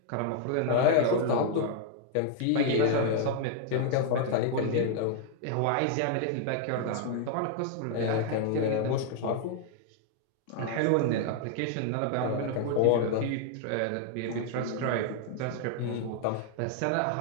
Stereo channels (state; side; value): different; both; correlation 0.00